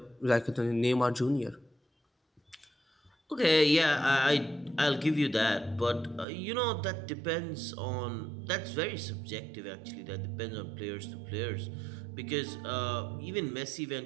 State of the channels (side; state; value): left; drops out; at 6.2 s